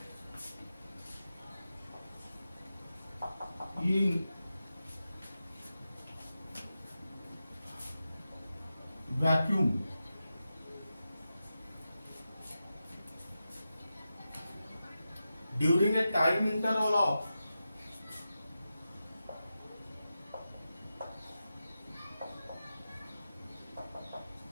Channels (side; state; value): both; inverted; correlation -0.91